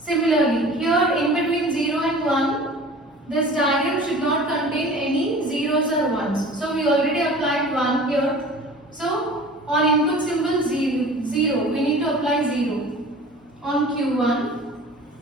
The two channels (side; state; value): both; normal; correlation 0.42